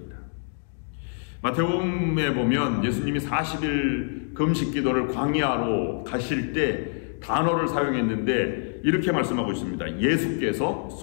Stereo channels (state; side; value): silent; right; 61 dB below the other